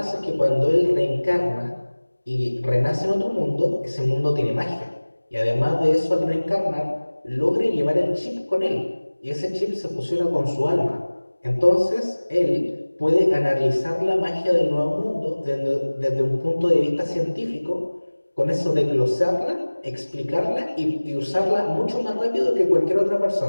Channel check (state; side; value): inverted; both; correlation -1.00